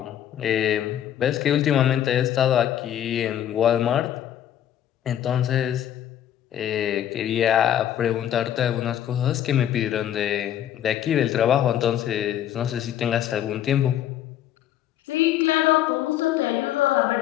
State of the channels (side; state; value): right; quieter; 11.0 dB